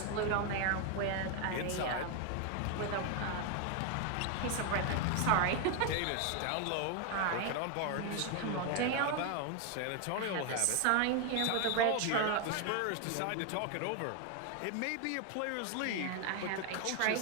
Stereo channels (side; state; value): both; different; correlation 0.01